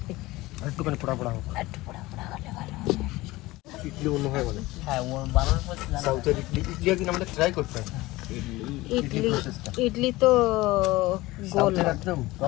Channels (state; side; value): quieter; right; 19.5 dB